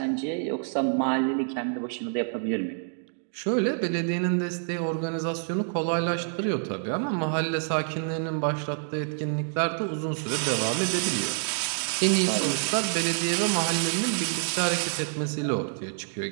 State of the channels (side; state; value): left; silent; digital silence